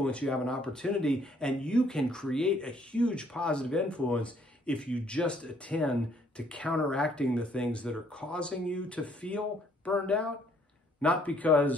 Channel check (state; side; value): normal; both; correlation 0.65